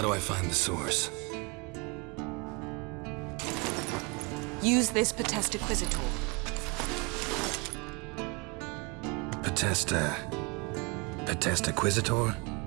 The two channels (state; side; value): quieter; left; 29.9 dB